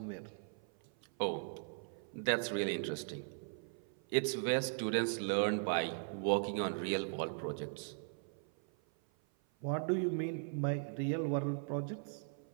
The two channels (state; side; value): silent; left; 52 dB below the other